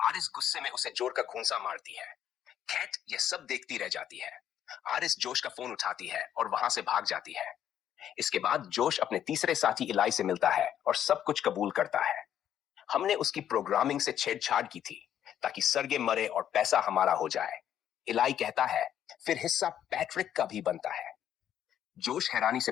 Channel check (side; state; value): right; quieter; 10.2 dB